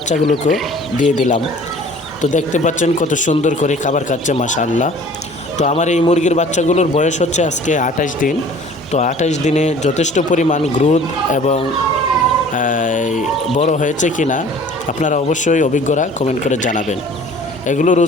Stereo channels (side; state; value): both; normal; correlation 0.49